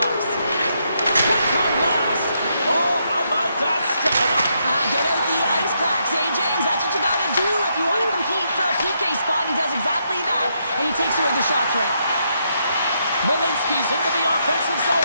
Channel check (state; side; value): inverted; both; correlation -0.78